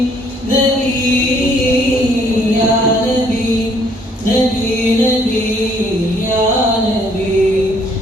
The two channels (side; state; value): both; normal; correlation 0.64